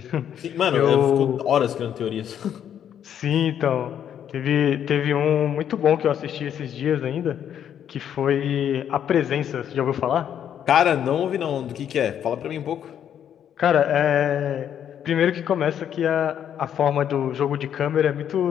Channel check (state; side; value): quieter; right; 9.4 dB